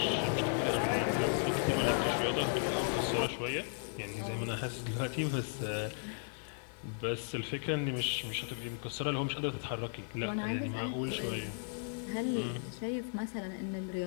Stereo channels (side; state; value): right; silent; digital silence